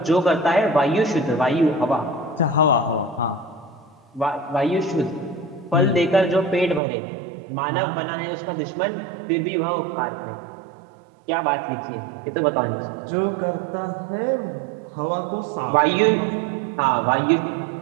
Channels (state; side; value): drops out; left; at 6.8 s